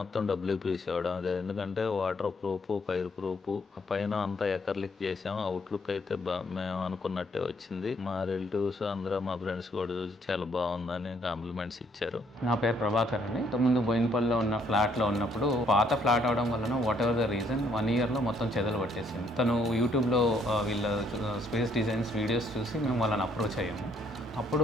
డబ్ల్యూపీసీ వాడడం. అదే ఎందుకంటే వాటర్ ప్రూఫ్, ఫైర్ ప్రూఫ్, పైన అంతా ఎకర్లిక్ చేసాం. అవుట్లుక్ అయితే మేము అనుకున్నట్టే వచ్చింది. మా రిలేటివ్స్ అందరూ, మా ఫ్రెండ్స్ కూడా చూసి చాలా బాగుందని కాంప్లిమెంట్స్ ఇచ్చారు. నా పేరు ప్రభాకర్ అండి. ఇంతకుముందు బోయినపల్లిలో ఉన్న ఫ్లాట్లో ఉన్నప్పుడు పాత ఫ్లాట్ అవడం వలన వాట్ ఎవర్ ద రీజన్ 1 yearలో మొత్తం చెదలు పట్టేసింది. తను యూట్యూబ్లో వీళ్ళ స్పేస్ డిజైన్స్ వీడియోస్ చూసి మేము వాళ్ళని అప్రోచ్ అయ్యాము. అప్పుడు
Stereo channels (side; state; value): both; normal; correlation 0.68